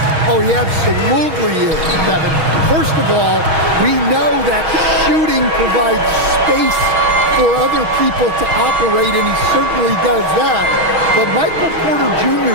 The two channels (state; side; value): late; left; 6.3 ms